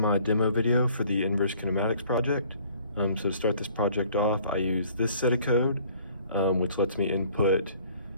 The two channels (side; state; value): both; inverted; correlation -0.56